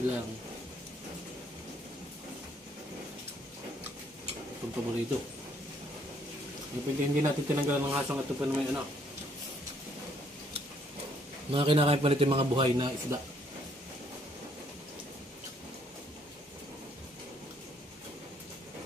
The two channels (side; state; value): both; normal; correlation 0.67